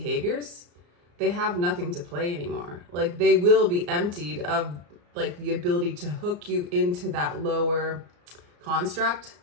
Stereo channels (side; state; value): left; late; 34 ms